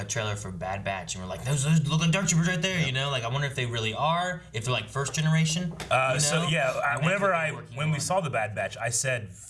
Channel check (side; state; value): both; identical; correlation 1.00